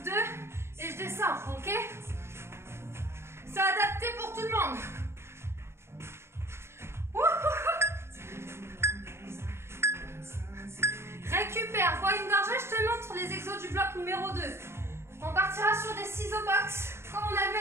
2, et je descends, ok? C'est adapté pour tout le monde. Récupère, bois une gorgée, je te montre les exos du bloc numéro 2. On partira sur des ciseaux box, comme on a vu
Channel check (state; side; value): late; left; 0.12 ms